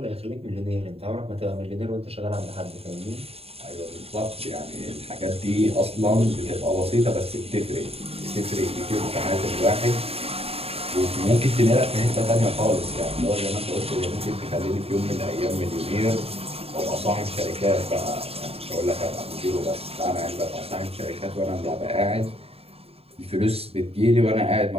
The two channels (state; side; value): late; left; 0.29 ms